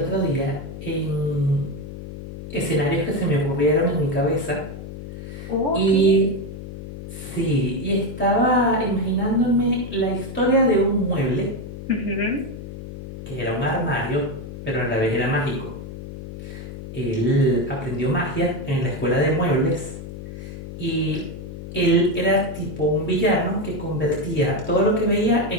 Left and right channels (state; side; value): noise; left; hum, 11 dB below the sound